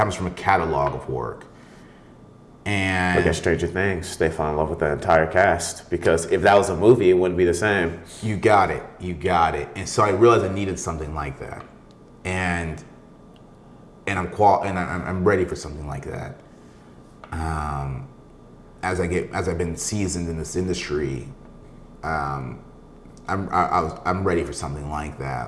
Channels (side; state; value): both; identical; correlation 1.00